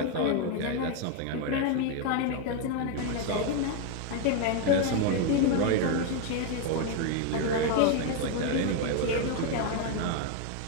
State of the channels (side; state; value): both; different; correlation 0.01